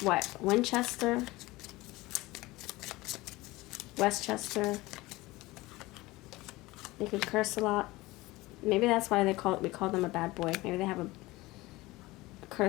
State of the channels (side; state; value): right; quieter; 20.2 dB